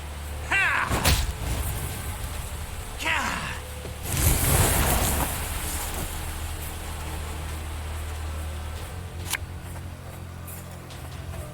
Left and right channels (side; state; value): both; identical; correlation 1.00